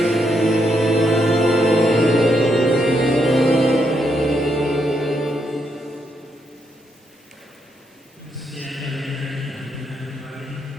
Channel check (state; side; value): normal; both; correlation 0.78